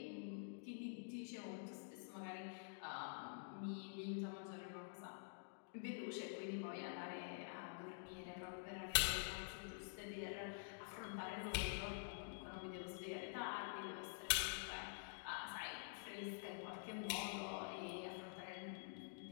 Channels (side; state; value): right; silent; digital silence